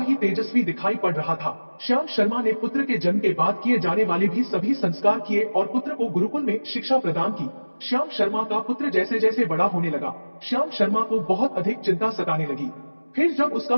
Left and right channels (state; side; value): inverted; both; correlation -1.00